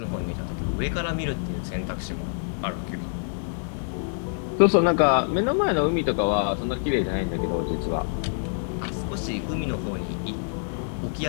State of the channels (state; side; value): silent; right; 61 dB below the other